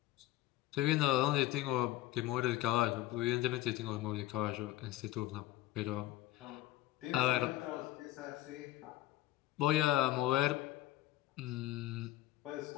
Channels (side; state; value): right; quieter; 15.9 dB